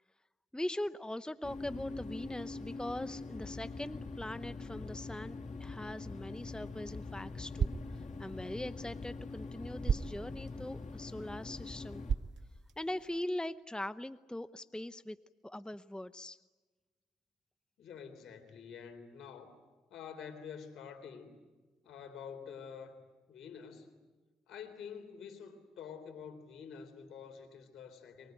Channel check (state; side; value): normal; both; correlation 0.85